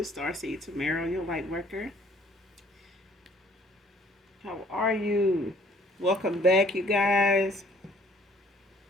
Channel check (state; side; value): normal; both; correlation 0.58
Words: starseed Tamara, your light worker. How are you? Welcome back, you guys.